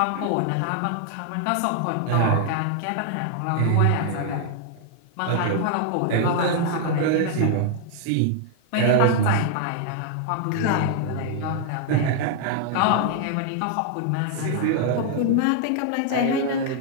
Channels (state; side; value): different; both; correlation 0.00